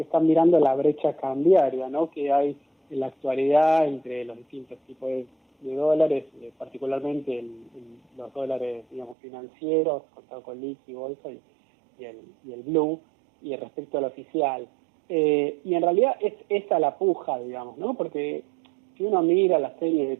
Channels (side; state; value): left; drops out; at 9.2 s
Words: mirando la brecha cambiaria, ¿no? Que hay en la actualidad entre los distintos tipos de dólares, particularmente los dólares, digamos, financieros, contado con liqui, bolsa y el blue, y respecto al oficial. Y en realidad es esa la puja, digamos, ¿no? Porque si uno mira la serie de